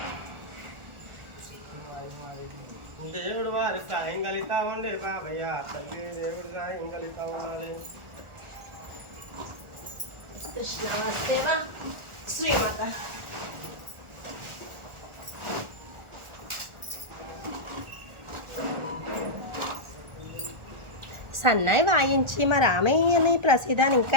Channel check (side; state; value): left; late; 1.4 ms